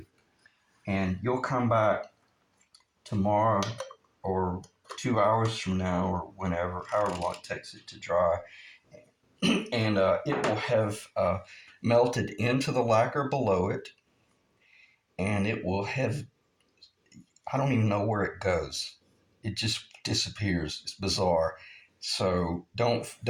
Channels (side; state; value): both; identical; correlation 1.00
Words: And you'll come back tomorrow or 2 hours from now or whenever, however long it takes it to dry, and it will have melted into the lacquer below it, and it will have, I don't even know where it goes. It just disappears. It's bizarre. So